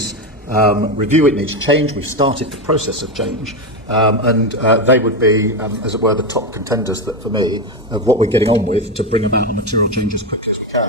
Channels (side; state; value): both; normal; correlation 0.12